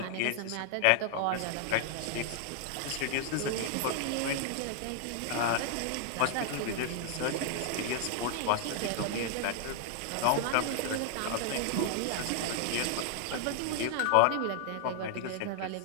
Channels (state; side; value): different; both; correlation 0.00